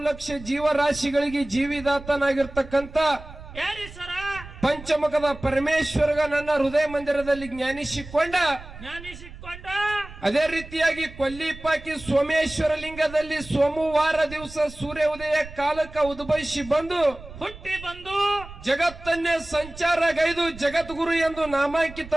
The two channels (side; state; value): right; noise; rumble, 16 dB below the sound